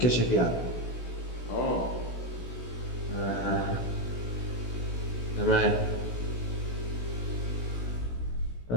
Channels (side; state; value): right; late; 16 ms